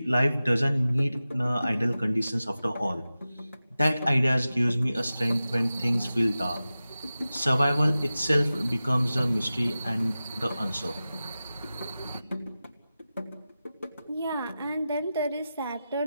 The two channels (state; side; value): inverted; both; correlation -0.94